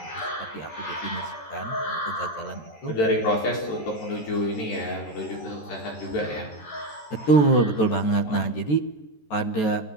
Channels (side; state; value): right; late; 13 ms